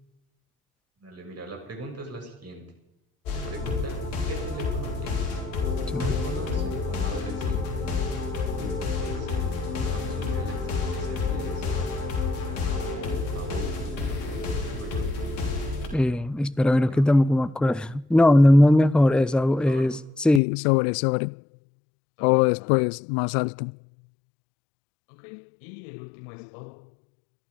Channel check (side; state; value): right; drops out; at 20.4 s